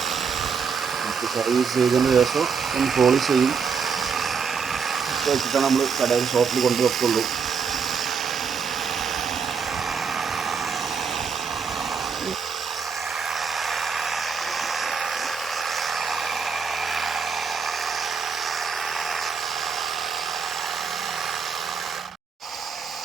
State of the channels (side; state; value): left; quieter; 6.0 dB